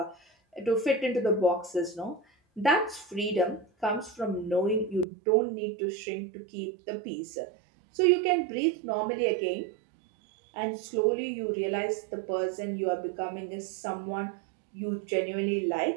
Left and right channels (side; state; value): left; drops out; at 5.1 s